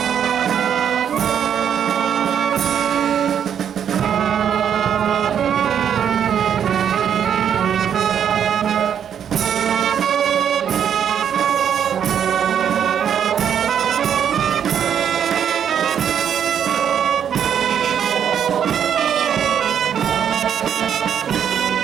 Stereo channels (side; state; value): left; quieter; 8.7 dB